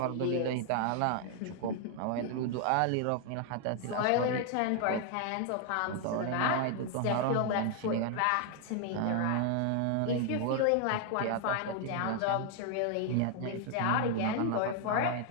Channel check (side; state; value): both; different; correlation 0.00